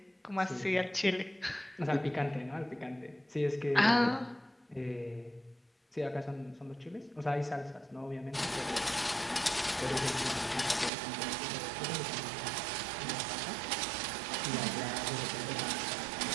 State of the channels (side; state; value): left; drops out; at 10.9 s